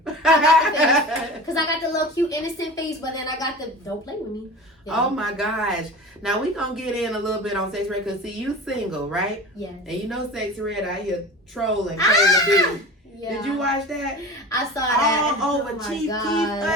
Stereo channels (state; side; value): normal; both; correlation 0.35